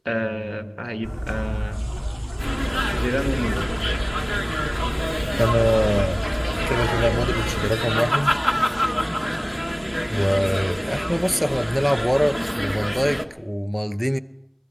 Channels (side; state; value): both; identical; correlation 1.00